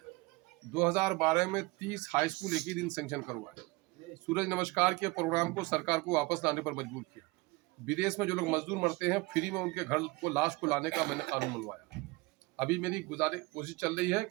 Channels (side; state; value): left; quieter; 23.6 dB